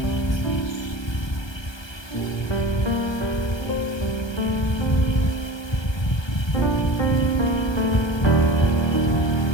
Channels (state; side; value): late; right; 1.3 ms